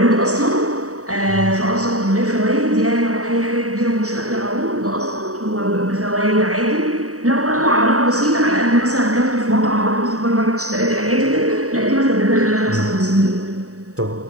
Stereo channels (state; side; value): late; left; 0.66 ms